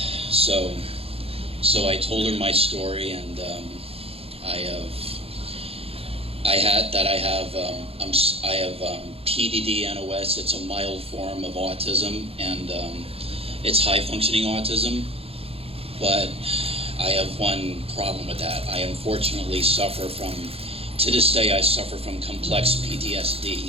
So I told her my story, and I have PDD-NOS. It's a mild form of autism, and it's high-functioning autism. But I have one problem with that. I unfortunately suffer from, to this day, I suffer from complex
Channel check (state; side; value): late; left; 0.28 ms